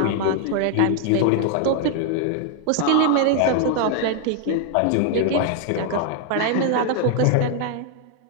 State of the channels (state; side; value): different; both; correlation 0.00